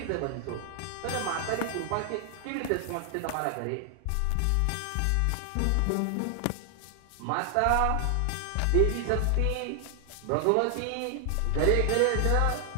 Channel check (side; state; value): both; different; correlation 0.00